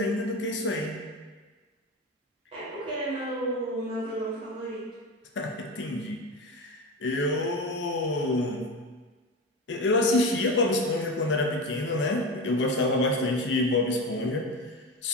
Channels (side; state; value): both; normal; correlation 0.23